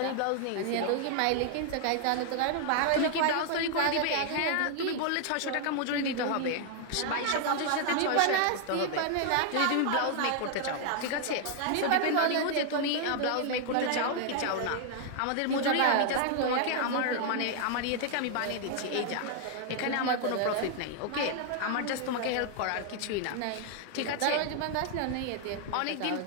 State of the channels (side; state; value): both; different; correlation 0.00